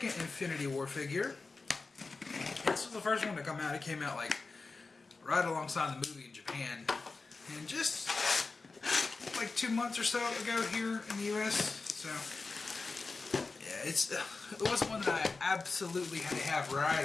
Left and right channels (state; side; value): quieter; right; 4.0 dB